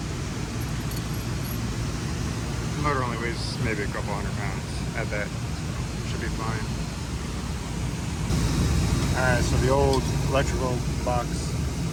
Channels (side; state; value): both; identical; correlation 1.00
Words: The motor only weighs maybe a couple 100 pounds at that, so should be fine. Alright, so the old electrical box